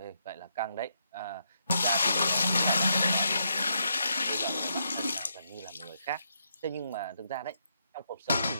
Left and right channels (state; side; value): inverted; both; correlation -0.79